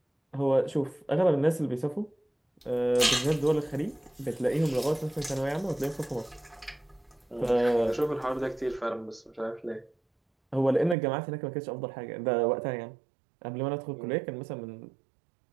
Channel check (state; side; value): drops out; left; at 11.0 s